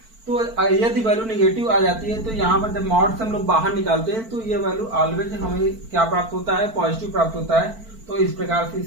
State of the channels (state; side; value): late; left; 4.5 ms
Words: तो यदि वैल्यू निगेटिव आ जाती है तो यहाँ पर जब मॉड से हम लोग बाहर निकालते हैं तो ये वैल्यू ऑलवेज हमें क्या प्राप्त होता है, पॉजिटिव प्राप्त होता है। तो इस प्रकार से